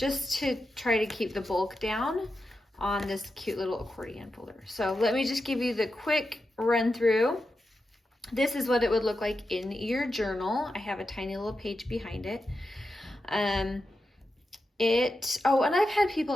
to try to keep the bulk down on this cute little accordion folder. So let me just give you the quick run through. This is what it would look like in your journal. I have a tiny little page behind it. And I've had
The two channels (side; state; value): both; normal; correlation 0.89